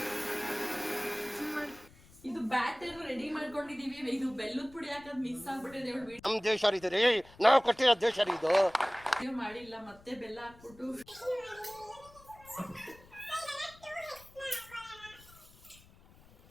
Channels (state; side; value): noise; left; rumble, 24 dB below the sound